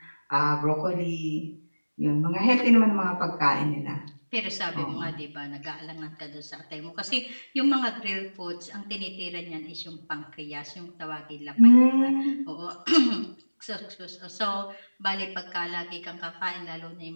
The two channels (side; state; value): both; inverted; correlation -1.00